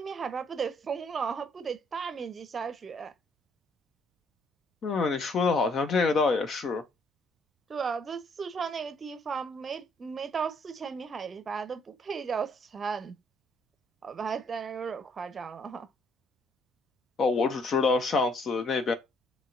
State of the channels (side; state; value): both; normal; correlation 0.66